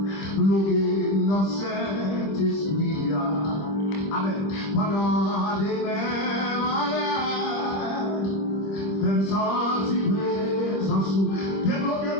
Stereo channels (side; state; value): right; late; 26 ms